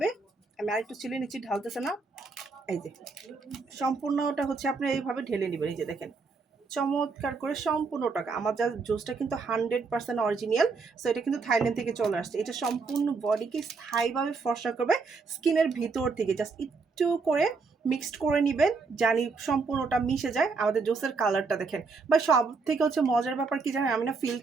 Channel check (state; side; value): quieter; left; 4.5 dB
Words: আমি আরেকটু চিলে নিচ্ছি, ঢালতেছে না, এই যে সম্পূর্ণটা হচ্ছে আপনি এইভাবে ঢেলে নেবেন। এই যে দেখেন চমৎকার করে সম্পূর্ণ টাকা। আমার যা জুসটা কিন্তু 100% অরিজিনাল, সো এটা কিন্তু থাইল্যান্ড থেকে চলে আসছে। এটা সম্পূর্ণ বডিকে স্থায়ীভাবে ফর্সা করবে স্কিনের ভিতর থেকে। জাস্ট একটু করে মিক্সড করে নেবেন, জানি সম্পূর্ণটা মিশে যায়। আমাদের জুসের কালারটা দেখেন, বা সব থেকে হচ্ছে মজার ব্যাপার কি জানেন, আমি না